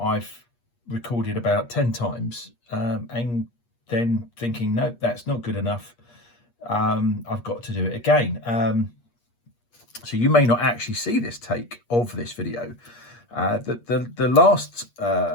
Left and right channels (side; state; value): right; late; 8.4 ms